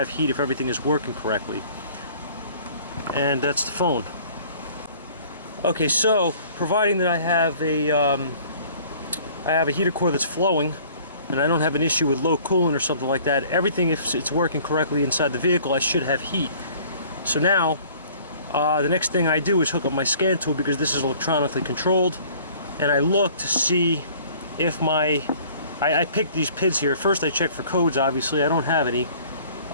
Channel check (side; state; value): both; inverted; correlation -0.52